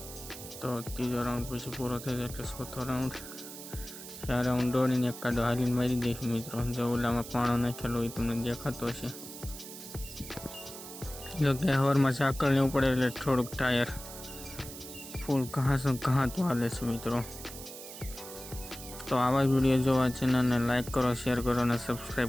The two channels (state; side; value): noise; right; hiss, 12 dB below the sound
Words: તો ત્રીજો રાઉન્ડ પછી પૂરો થઈ જાય એટલે ચોથો રાઉન્ડ. 4 રાઉન્ડ દોડીને એક કાદો હાલીને મારી દઈશું મિત્રો. જો ઓલામાં પાણો નાખેલો એ તમને દેખાતો હશે. જો કે હવારમાં સાકળ લેવું પડે એટલે થોડુંક ટાયર ફૂલ ઘાતું હાલે છે મિત્રો. તો આવા જ વિડીયો જોવા ચેનલને લાઈક કરો, શેર કરો અને